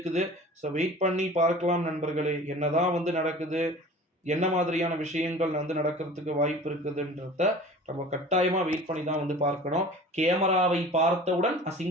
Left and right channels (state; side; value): normal; both; correlation 0.42